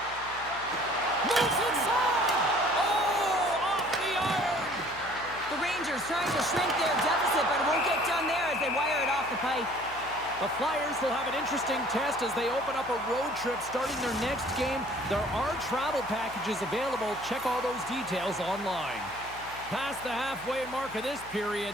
Moves inside! Oh, off the iron! The Rangers trying to shrink their deficit, but it won't get done there as they wire it off the pipe. The Flyers will have an interesting test as they open up a road trip starting their next game. There are travel packages available. Check all those details online. Past the halfway mark of this period,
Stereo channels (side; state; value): left; noise; hum, 20 dB below the sound